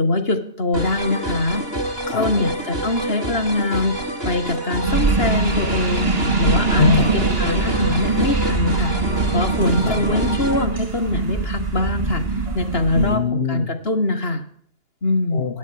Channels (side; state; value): right; late; 2.9 ms